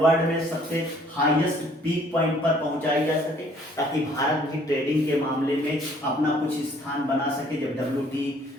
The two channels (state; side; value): normal; both; correlation 0.60